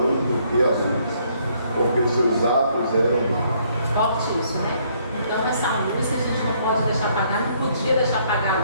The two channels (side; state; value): both; inverted; correlation -0.67